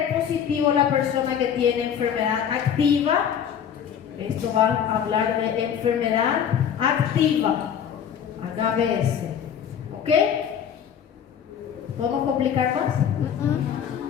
positivo la persona que tiene enfermedad activa? Esto va a hablar de enfermedad activa, HBs. ¿Ok? ¿Podemos complicar más?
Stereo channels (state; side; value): quieter; right; 8.5 dB